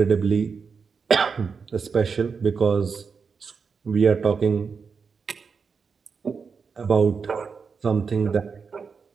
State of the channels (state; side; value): quieter; left; 5.5 dB